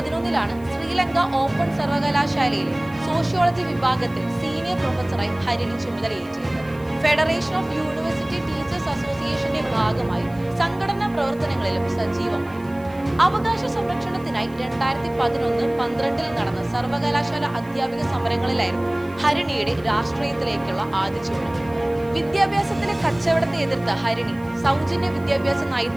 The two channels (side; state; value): right; noise; hiss, 27 dB below the sound